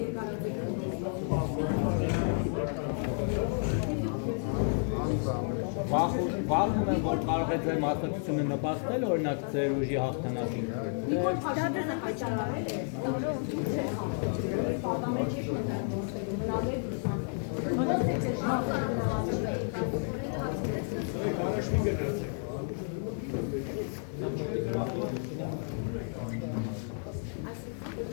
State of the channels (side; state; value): right; silent; 57 dB below the other